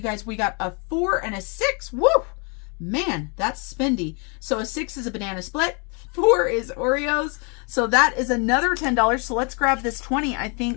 guys, we got a 4 and a 6. Woo! Man, that's spendy. So a 6 is a banana split. 4 is Oreos. So that is another $10. So let's grab this 20. I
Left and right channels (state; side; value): quieter; right; 34.7 dB